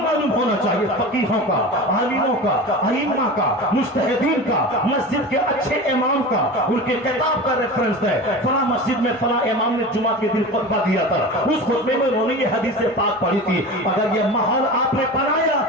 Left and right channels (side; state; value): both; normal; correlation 0.31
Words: ہونا چاہیے، فقیہوں کا، عالموں کا، ائمہ کا، مجتہدین کا، مسجد کے اچھے امام کا، ان کے کتاب کا ریفرنس ہے، فلاں مسجد میں فلاں امام نے جمعہ کے دن خطبہ دیا تھا، اس خطبے میں انہوں نے یہ حدیث پاک پڑھی تھی۔ اگر یہ ماحول آپ نے بنایا